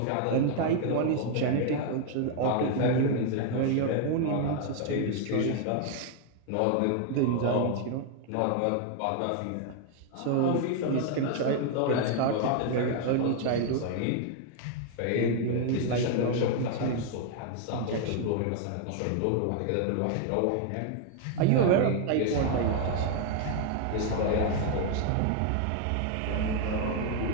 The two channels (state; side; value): different; both; correlation 0.00